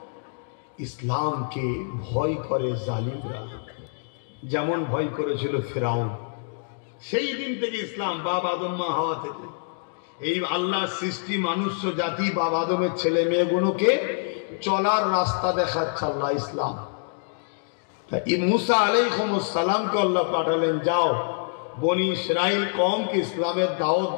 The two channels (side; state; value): right; silent; digital silence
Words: ইসলামকে ভয় করে জালিমরা, যেমন ভয় করেছিল ফিরাউন। সেই দিন থেকে ইসলাম, বাপ আদম মা হাওয়া থেকে, এই আল্লাহ সৃষ্টি মানুষ জাতি বাপ আদমের ছেলে মেয়েগুলোকে চলার রাস্তা দেখাচ্ছে আল্লাহ ইসলাম। মুসা আলাইহিস সালামকে আল্লাহ পাঠালেন, যাও বনি ইসরাইল কওমকে ইসলামের দাওয়াত